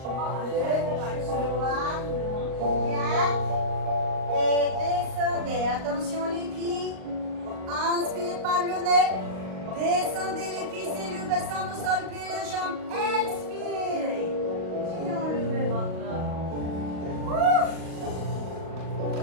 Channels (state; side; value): late; left; 38 ms